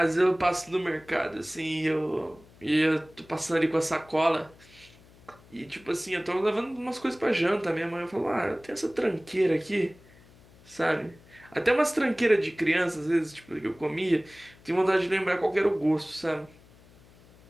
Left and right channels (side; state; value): left; noise; hum, 26 dB below the sound